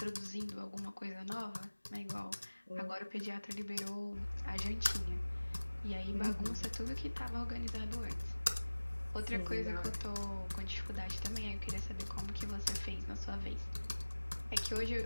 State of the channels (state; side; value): inverted; both; correlation -1.00